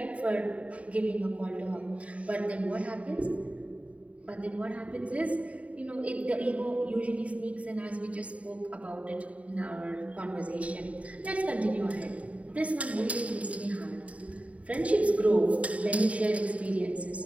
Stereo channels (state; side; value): late; left; 0.067 ms